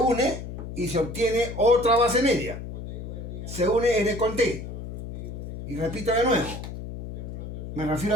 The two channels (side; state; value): left; noise; hum, 9 dB below the sound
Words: y se obtiene otra base media. Se une N con T. Y repito de nuevo. Me refiero